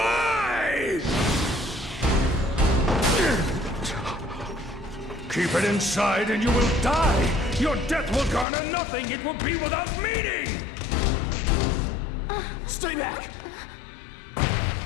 Keep it inside and you will die. Your death will garner nothing. It will be without meaning. Stay back!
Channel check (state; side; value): drops out; right; at 8.5 s